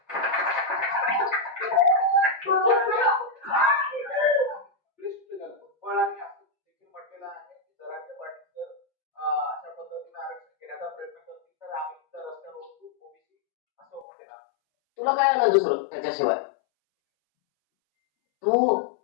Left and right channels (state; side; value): drops out; right; at 14.1 s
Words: म्हटलेलं आहे की जरांगे पाटील जर अशा पद्धतीने आरक्षण घेण्याचा प्रयत्न करतील तर आम्ही सुद्धा रस्त्यावर उतरू, ओबीसी असं म्हटलेलं. तुला काय आलं दुसरं त्याच्याशिवाय? तू